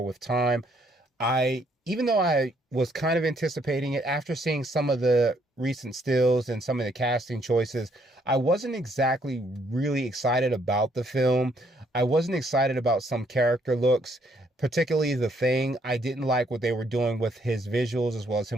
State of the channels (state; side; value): normal; both; correlation 0.69